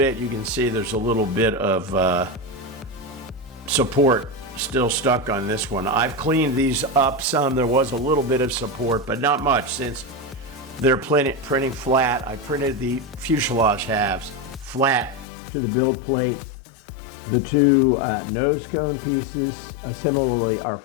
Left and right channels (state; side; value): drops out; right; at 15.2 s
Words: you can see there's a little bit of support still stuck on this one. I've cleaned these up some. There was a little bit of support, but not much, since they're printing flat. I printed the fuselage halves flat to the build plate. The two nose cone pieces similarly are